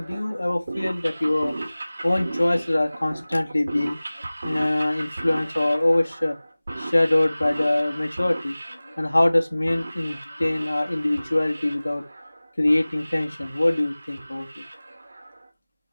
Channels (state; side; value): inverted; both; correlation -0.99